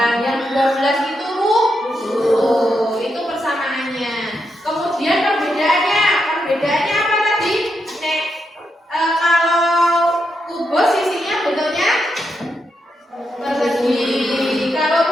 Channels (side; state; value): both; normal; correlation 0.83